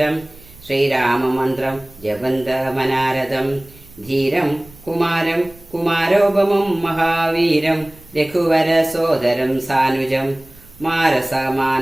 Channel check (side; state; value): right; noise; rumble, 24 dB below the sound